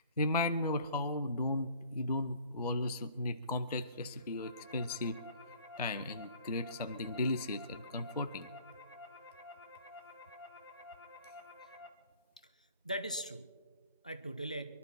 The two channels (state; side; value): inverted; both; correlation -0.52